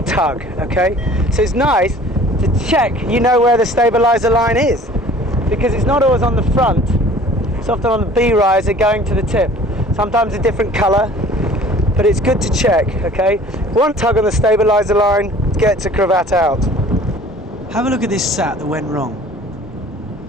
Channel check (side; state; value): both; normal; correlation 0.48